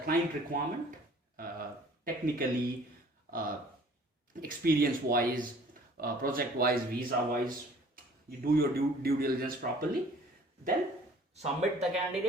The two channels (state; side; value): normal; both; correlation 0.53